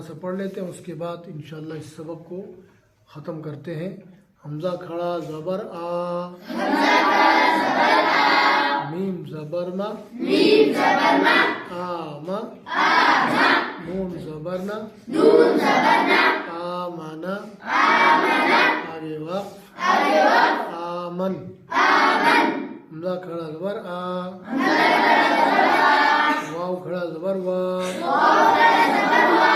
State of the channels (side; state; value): both; identical; correlation 1.00